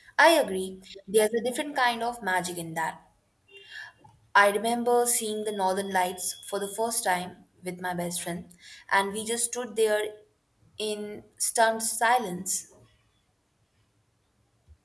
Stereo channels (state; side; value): identical; both; correlation 1.00